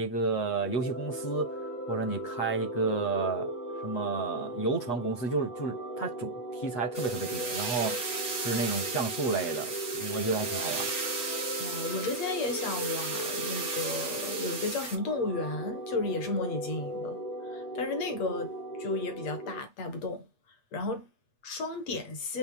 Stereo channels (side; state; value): right; late; 8.3 ms